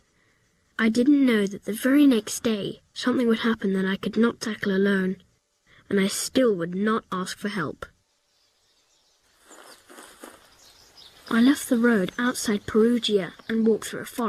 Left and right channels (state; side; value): identical; both; correlation 1.00